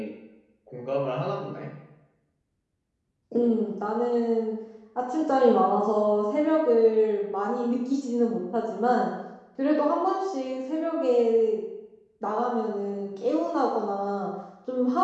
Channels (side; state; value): both; identical; correlation 1.00